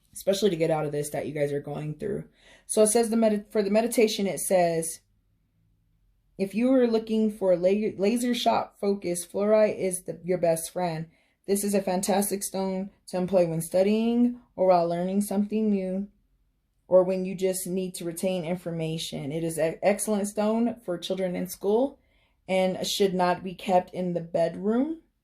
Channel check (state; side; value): identical; both; correlation 1.00